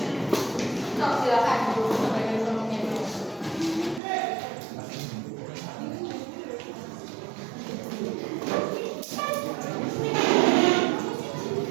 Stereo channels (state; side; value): drops out; left; at 4.0 s